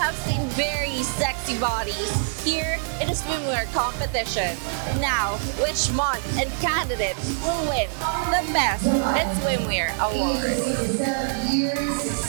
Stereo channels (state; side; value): silent; left; digital silence